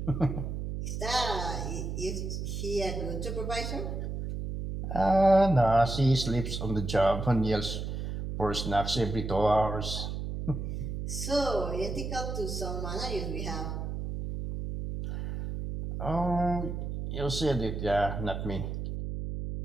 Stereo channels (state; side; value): noise; right; hum, 4 dB below the sound